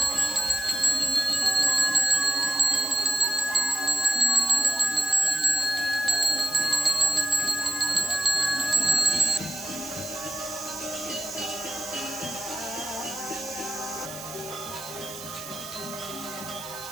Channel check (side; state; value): right; noise; hiss, 13 dB below the sound